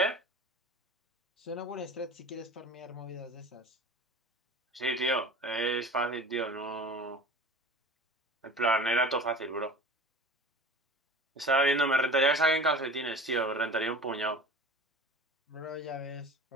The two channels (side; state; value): both; normal; correlation 0.38